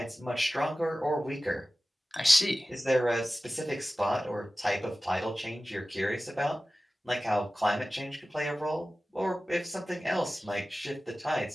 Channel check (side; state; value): both; normal; correlation 0.96